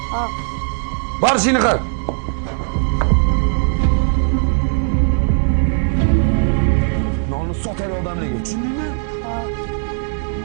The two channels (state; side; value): silent; left; 62 dB below the other